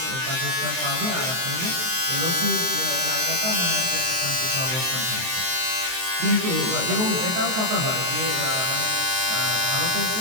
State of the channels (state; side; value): late; left; 23 ms